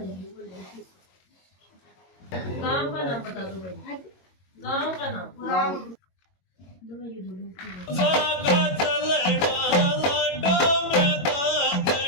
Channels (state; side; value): late; right; 22 ms